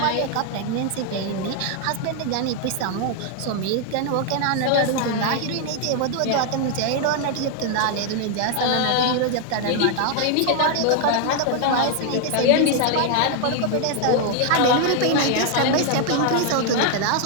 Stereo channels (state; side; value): different; both; correlation 0.00